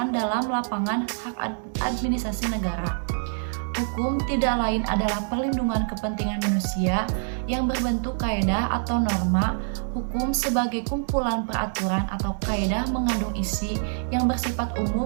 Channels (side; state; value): left; silent; 61 dB below the other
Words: dalam lapangan hak administrasi negara. Hukum tidak lain adalah perlindungan kepentingan manusia yang berbentuk kaedah atau norma. Hukum sebagai kumpulan peraturan atau kaedah mengandung isi yang bersifat